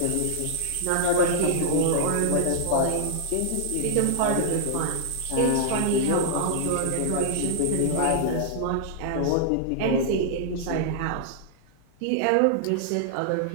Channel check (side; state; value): both; different; correlation -0.01